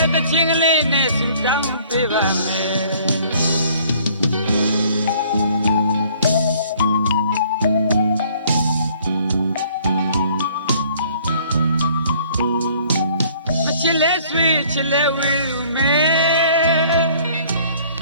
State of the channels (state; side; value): inverted; both; correlation -0.57